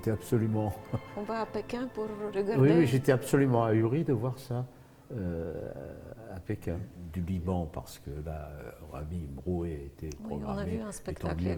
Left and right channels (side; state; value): both; identical; correlation 1.00